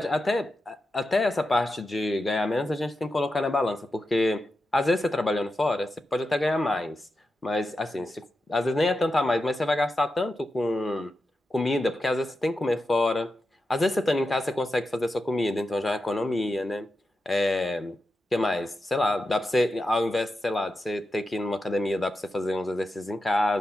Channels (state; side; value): normal; both; correlation 0.89